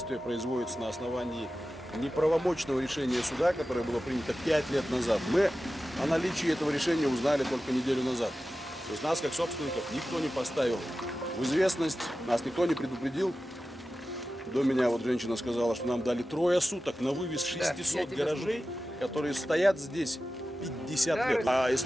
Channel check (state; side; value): normal; both; correlation 0.94